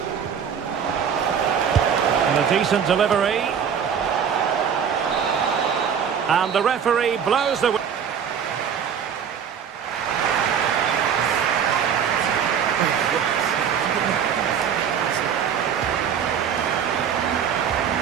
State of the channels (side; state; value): left; quieter; 7.7 dB